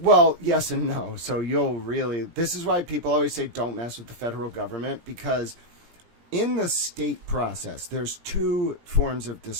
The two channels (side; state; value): left; late; 17 ms